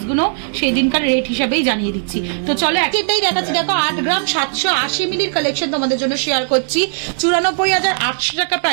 গুলো সেই দিনকার রেট হিসেবেই জানিয়ে দিচ্ছি। তো চলো একটাই দেখাচ্ছি। দেখো 8 গ্রাম 780 মিলির কালেকশন তোমাদের জন্য শেয়ার করছি। 94,800 টাকা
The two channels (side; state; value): left; silent; digital silence